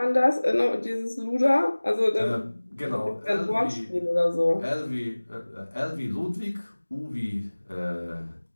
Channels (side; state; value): both; inverted; correlation -1.00